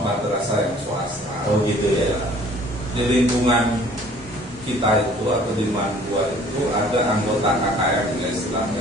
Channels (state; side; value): normal; both; correlation 0.54